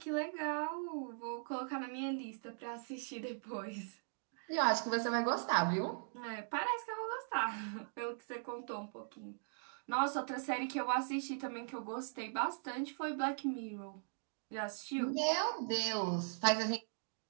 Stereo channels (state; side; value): silent; left; digital silence